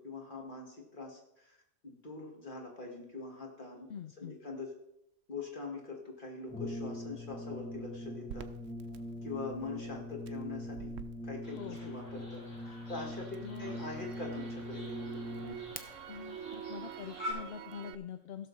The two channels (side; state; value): both; normal; correlation 0.15